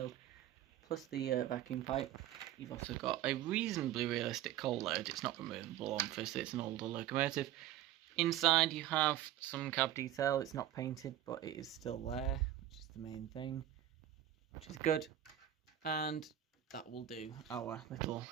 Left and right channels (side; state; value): left; quieter; 12.3 dB